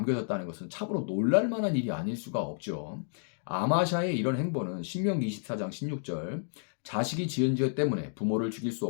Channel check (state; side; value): silent; right; digital silence